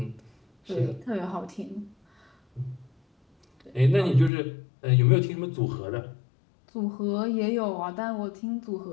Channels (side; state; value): right; drops out; at 4.3 s